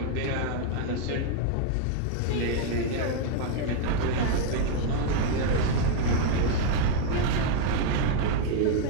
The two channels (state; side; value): different; both; correlation 0.00